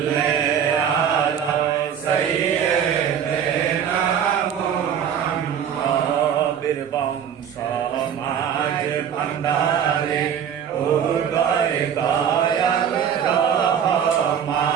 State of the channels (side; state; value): left; quieter; 8.4 dB